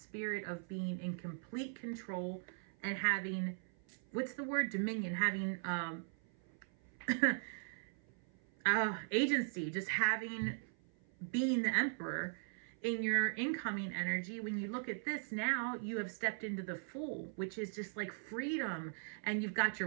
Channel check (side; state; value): left; silent; 51 dB below the other